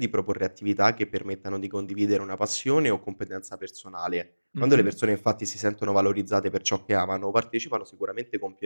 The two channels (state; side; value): inverted; both; correlation -1.00